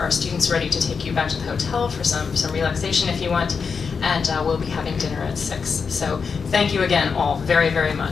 students ready to take you back to the hotel for some relaxation if you want. And we'll be having dinner at 6. So thank you again all very, very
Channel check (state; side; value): quieter; right; 5.6 dB